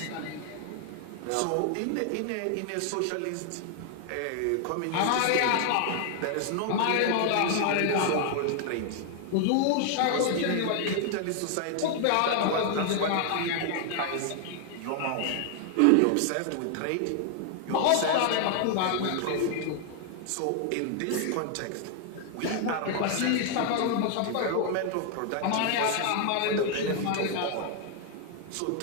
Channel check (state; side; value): different; both; correlation 0.00